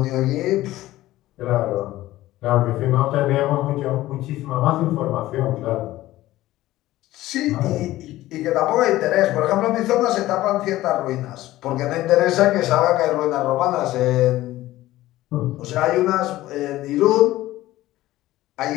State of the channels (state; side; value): quieter; right; 16.0 dB